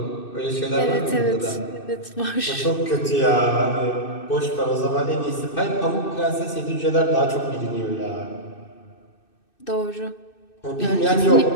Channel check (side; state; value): right; late; 2.6 ms